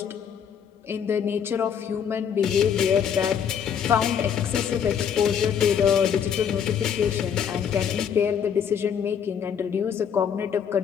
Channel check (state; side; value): quieter; right; 7.9 dB